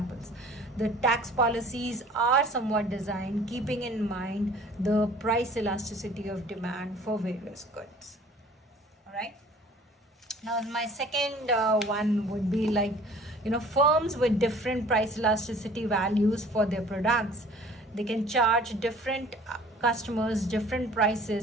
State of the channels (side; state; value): both; normal; correlation 0.50